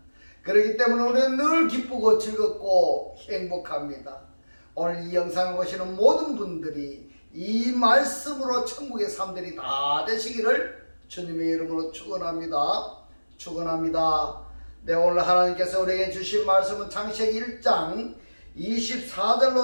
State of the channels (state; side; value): inverted; both; correlation -1.00